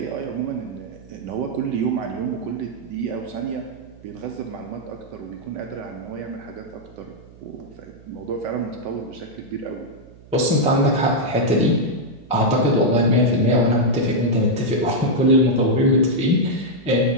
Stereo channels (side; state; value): right; noise; hum, 22 dB below the sound